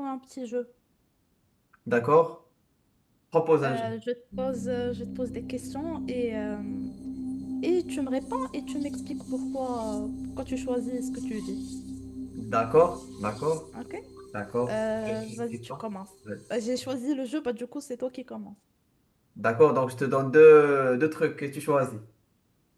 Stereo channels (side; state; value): both; identical; correlation 1.00